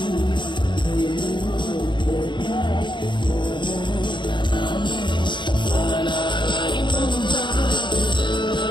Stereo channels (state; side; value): late; right; 0.23 ms